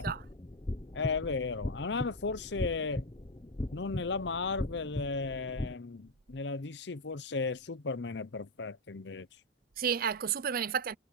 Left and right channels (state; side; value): normal; both; correlation 0.04